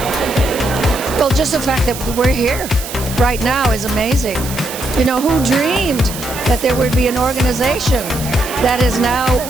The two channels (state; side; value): noise; right; hiss, 10 dB below the sound